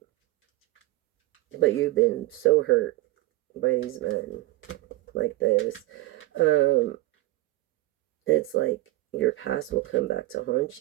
you've been so hurt by these men like this. It's like your past will come back to haunt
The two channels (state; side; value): quieter; left; 18.7 dB